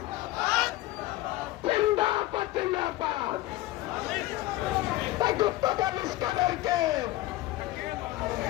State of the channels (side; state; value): right; quieter; 17.0 dB